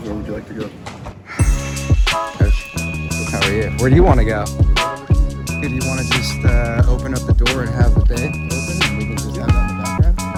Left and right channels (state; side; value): identical; both; correlation 1.00